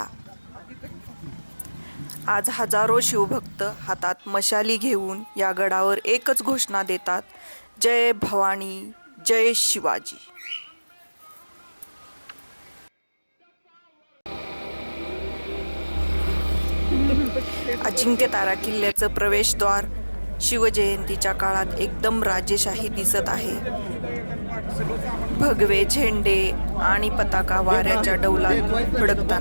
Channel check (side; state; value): both; inverted; correlation -1.00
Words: आज हजारो शिवभक्त हातात मशाली घेऊन या गडावर एकच घोषणा देतात, जय भवानी, जय शिवाजी. अजिंक्यतारा किल्ल्याचं प्रवेशद्वार शिवजयंतीच्या काळात एकदम राजेशाही दिसत आहे. भगवे झेंडे आणि पताका वाऱ्याच्या डौलात